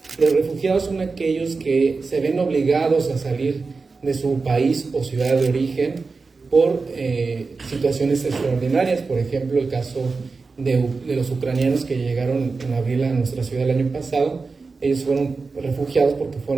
Los refugiados son aquellos que se ven obligados a salir de su país o ciudad de origen por situaciones extraordinarias. Por ejemplo, el caso de los ucranianos que llegaron en abril a nuestra ciudad el año pasado. Ellos fueron refugiados porque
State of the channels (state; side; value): quieter; left; 4.3 dB